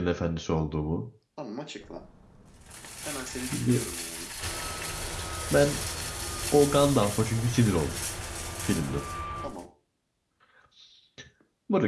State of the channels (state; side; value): identical; both; correlation 1.00